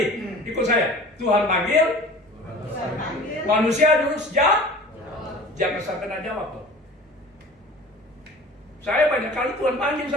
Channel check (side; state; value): both; normal; correlation 0.42